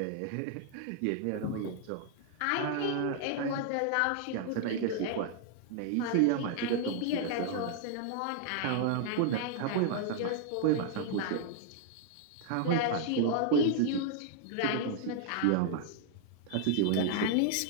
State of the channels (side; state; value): both; different; correlation 0.00